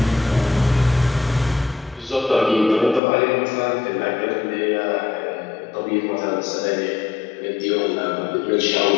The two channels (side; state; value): right; drops out; at 3.0 s